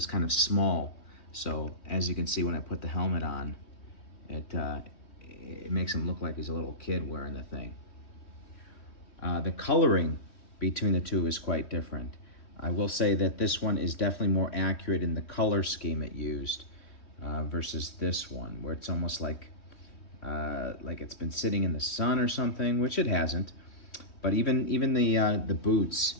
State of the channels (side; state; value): right; late; 3.2 ms